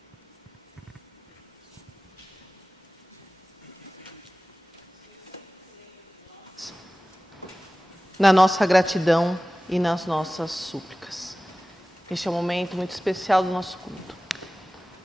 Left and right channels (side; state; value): both; normal; correlation 0.97